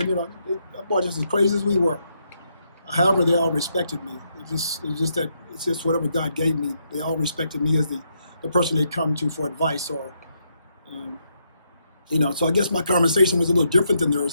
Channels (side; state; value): both; inverted; correlation -0.78